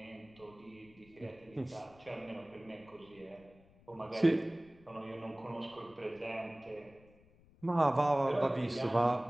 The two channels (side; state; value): left; noise; rumble, 26 dB below the sound